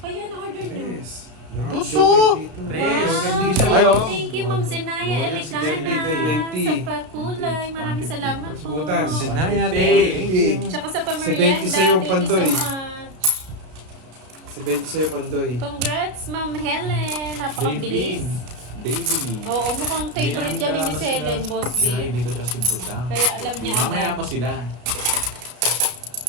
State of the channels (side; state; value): left; late; 33 ms